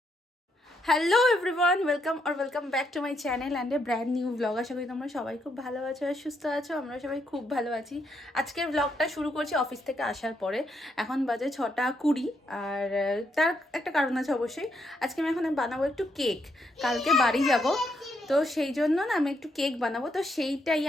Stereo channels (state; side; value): normal; both; correlation 0.77